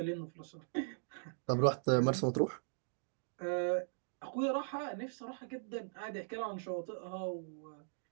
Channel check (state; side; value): silent; left; digital silence